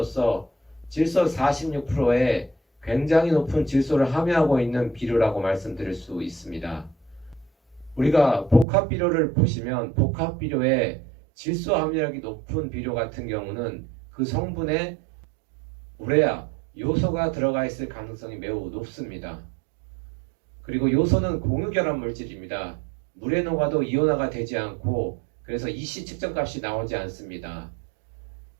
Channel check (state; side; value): drops out; left; at 8.7 s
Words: 질소 46%의 굉장히 높은 질소를 함유하고 있는 비료라고 말씀드릴 수 있습니다. 우리가 복합 비료를 보시면 복합 비료에 질소 함유량이 높은 비료 같은 경우는 그 성분에 우레아, 요소가 들어가 있을 가능성이 매우 높습니다. 그리고 요소는 공유결합 물질입니다. 물에 녹아도 이온화가 되지 않고 그래서 EC 측정값이 나오지 않습니다.